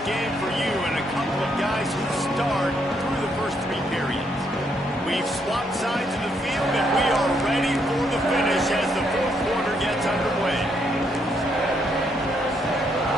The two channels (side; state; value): both; normal; correlation 0.74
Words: game for you and a couple of guys who start through the first three periods. We've swapped sides of the field, and we are ready for the finish as the fourth quarter gets underway.